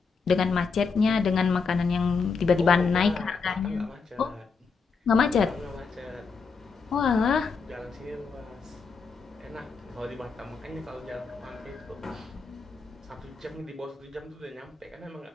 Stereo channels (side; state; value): right; quieter; 5.0 dB